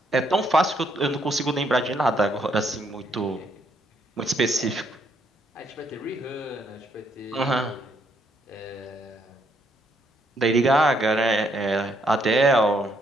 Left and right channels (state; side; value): normal; both; correlation 0.72